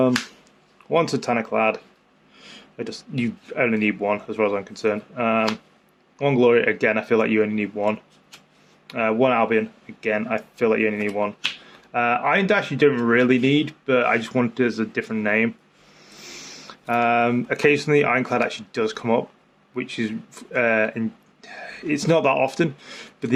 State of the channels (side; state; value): both; identical; correlation 1.00